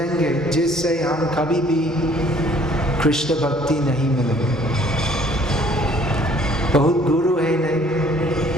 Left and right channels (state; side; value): normal; both; correlation 0.58